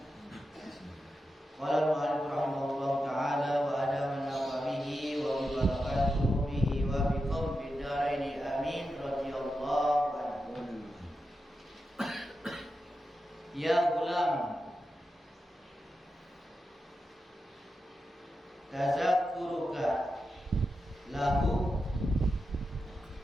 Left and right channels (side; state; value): both; normal; correlation 0.89